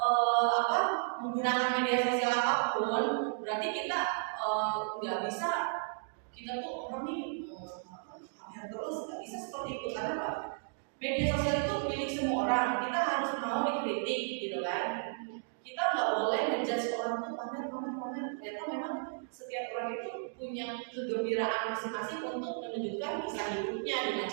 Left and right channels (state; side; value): silent; left; digital silence